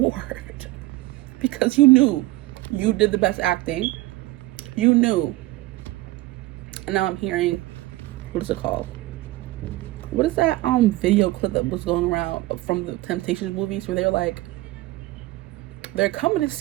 Because you knew you did the best acting. You knew. And now I'm hearing, what is it called? What is that video clip that was going around from the Temptations movies where they're like, they're coming to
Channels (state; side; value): quieter; left; 18.5 dB